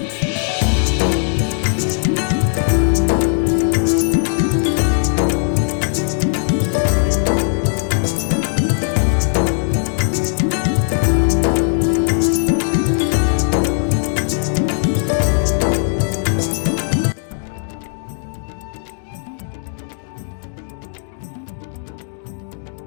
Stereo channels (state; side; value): silent; right; digital silence